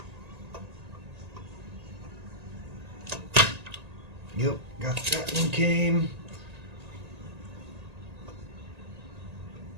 Yep, got that one came.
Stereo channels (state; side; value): late; left; 1.8 ms